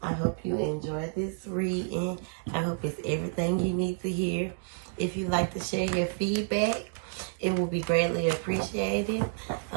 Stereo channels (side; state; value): left; silent; digital silence